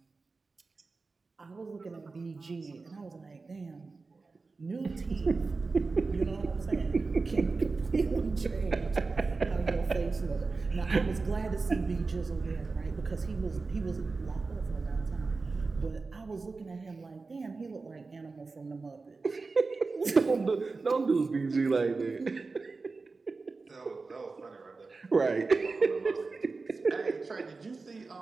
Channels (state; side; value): quieter; left; 4.0 dB